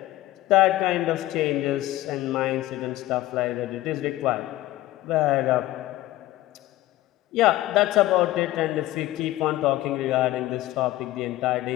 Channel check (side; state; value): right; quieter; 16.3 dB